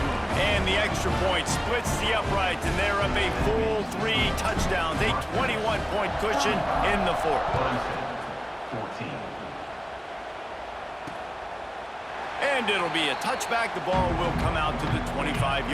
And the extra point splits the uprights, and they're up a full 3 touchdowns, a 21-point cushion in the fourth. 14. And it'll be a touchback. The ball will come out to the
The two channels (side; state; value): both; identical; correlation 1.00